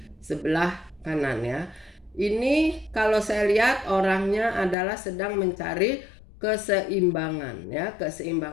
sebelah kanan ya. Ini kalau saya lihat orangnya adalah sedang mencari keseimbangan ya,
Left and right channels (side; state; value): right; drops out; at 4.8 s